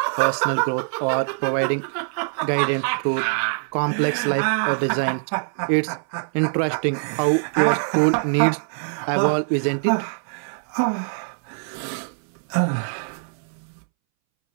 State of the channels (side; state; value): left; silent; 63 dB below the other